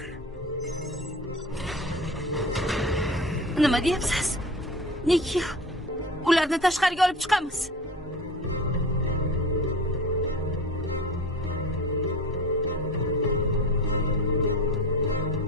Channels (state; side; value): normal; both; correlation 0.35